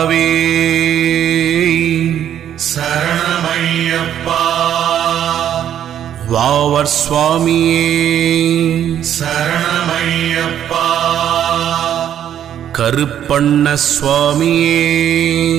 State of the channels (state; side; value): quieter; left; 10.2 dB